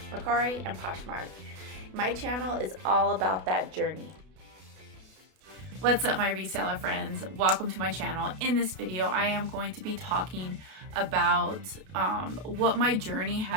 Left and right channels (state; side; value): late; left; 32 ms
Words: Mercari, and Poshmark. My channel is all about that journey. What's up, my reseller friends? Welcome to my channel. In this video, I am going to be talking about what my journey